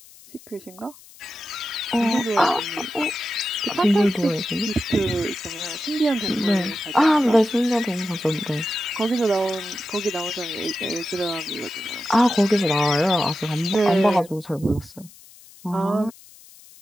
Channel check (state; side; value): noise; left; hiss, 22 dB below the sound